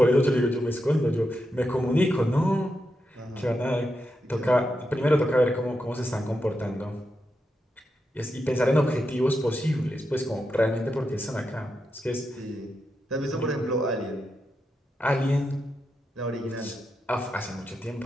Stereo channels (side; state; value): both; normal; correlation 0.86